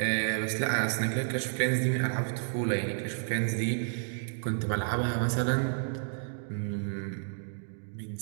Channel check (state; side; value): silent; left; digital silence